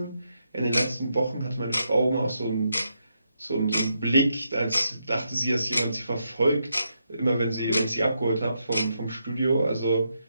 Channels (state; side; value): inverted; both; correlation -0.81